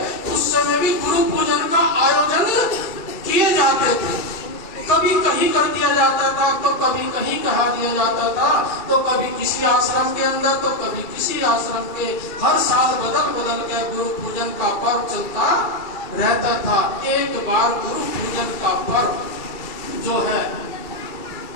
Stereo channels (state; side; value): late; right; 2.3 ms